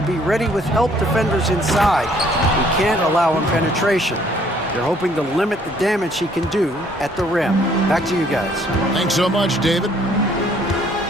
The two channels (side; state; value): both; normal; correlation 0.62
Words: be ready with help defenders inside. We can't allow him penetration. They're hoping to limit the damage he can do at the rim. Back to you guys. Thanks so much, David.